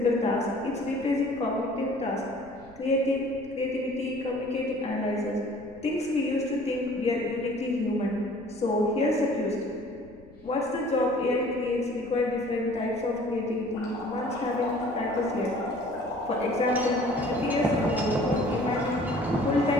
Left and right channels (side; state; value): left; noise; rumble, 24 dB below the sound